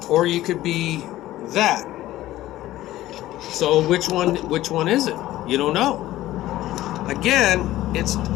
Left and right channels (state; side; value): quieter; right; 15.2 dB